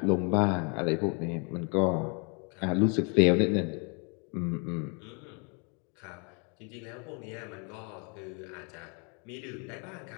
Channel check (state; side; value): quieter; right; 35.3 dB